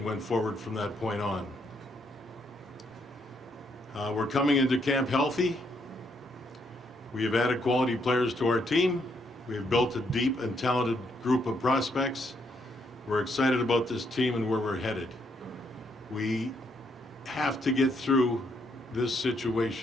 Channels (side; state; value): both; normal; correlation 0.74